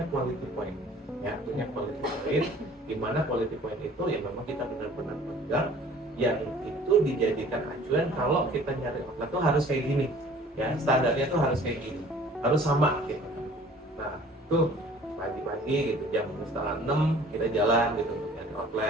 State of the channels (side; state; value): both; normal; correlation 0.50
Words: quality point. Ya punya quality point. Di mana quality point itu ya memang kita benar-benar pegang. Yang itu dijadikan acuan kalau kita nyari outlet tuh harus kayak gini. Ya standarnya tuh harus kayak gini. Harus sama gitu. Nah tuh pagi-pagi gitu jam 5:30 kita jalan gitu nyari